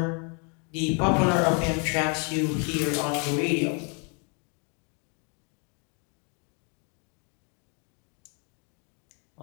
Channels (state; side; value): quieter; right; 36.2 dB